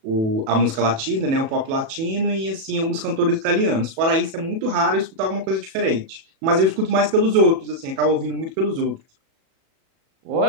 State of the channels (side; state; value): left; late; 37 ms